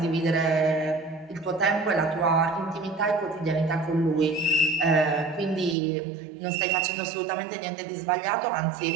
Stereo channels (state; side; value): drops out; left; at 5.8 s